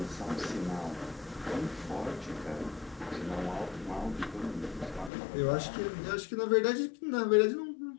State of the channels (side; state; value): right; drops out; at 5.1 s